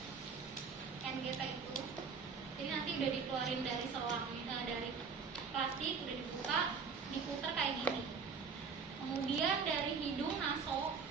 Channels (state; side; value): quieter; left; 5.4 dB